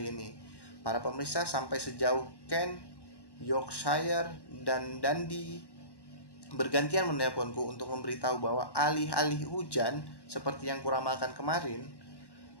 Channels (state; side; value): late; right; 1.1 ms